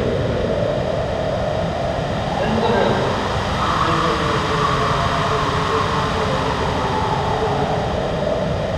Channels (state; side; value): identical; both; correlation 1.00